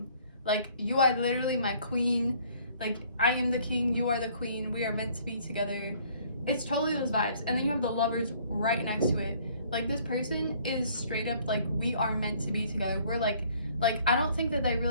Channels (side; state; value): both; inverted; correlation -0.59